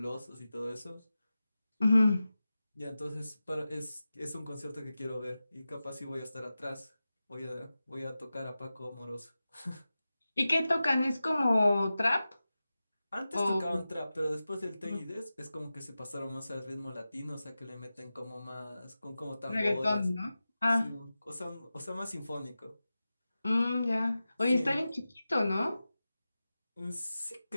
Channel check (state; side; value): inverted; both; correlation -0.94